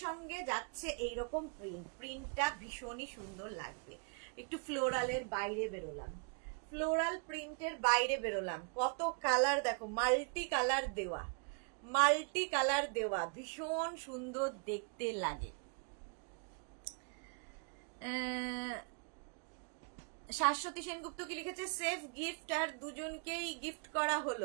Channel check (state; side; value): quieter; left; 39.4 dB